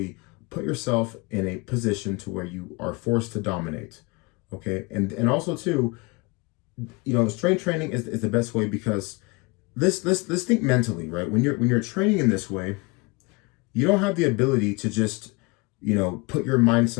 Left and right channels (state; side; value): quieter; right; 27.1 dB